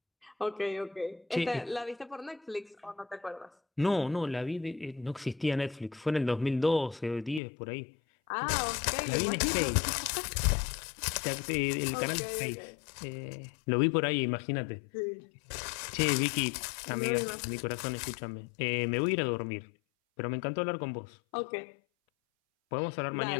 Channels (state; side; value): drops out; right; at 7.4 s